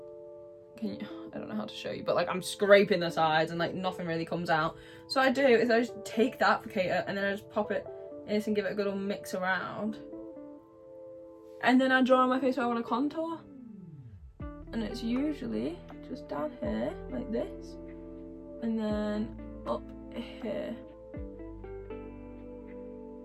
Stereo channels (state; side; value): identical; both; correlation 1.00